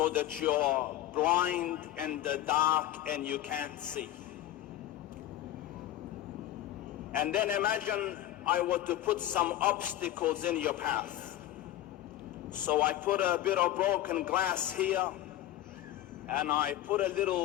that you're blind in the dark and you can't see. And then imagine I were to put some obstacles in your path. So I put a bit of broken glass here, and I put a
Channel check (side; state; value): right; quieter; 13.6 dB